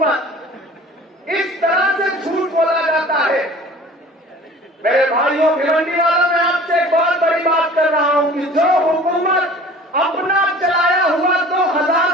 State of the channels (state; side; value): normal; both; correlation 0.45